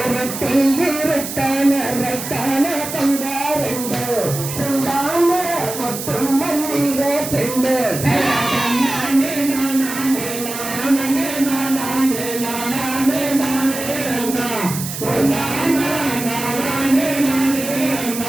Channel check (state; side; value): noise; right; hiss, 7 dB below the sound